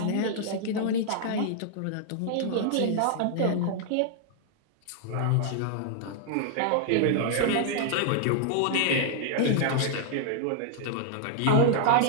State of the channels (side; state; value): both; different; correlation -0.01